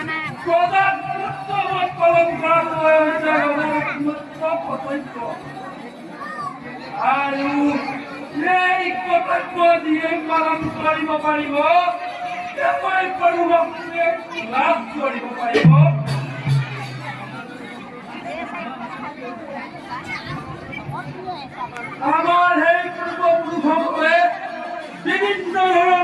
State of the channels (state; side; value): identical; both; correlation 1.00